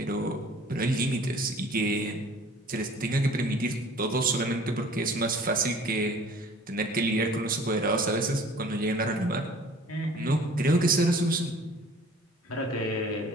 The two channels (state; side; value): normal; both; correlation 0.49